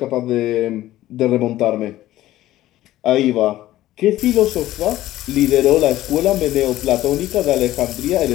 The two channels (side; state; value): right; quieter; 14.9 dB